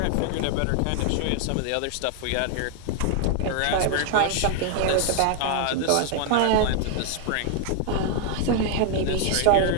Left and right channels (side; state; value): both; different; correlation 0.00